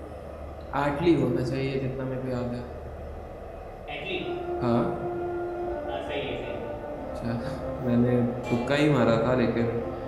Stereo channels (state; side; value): identical; both; correlation 1.00